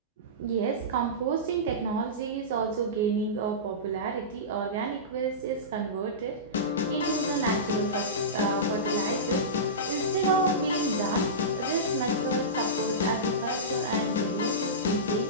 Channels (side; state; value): both; normal; correlation -0.19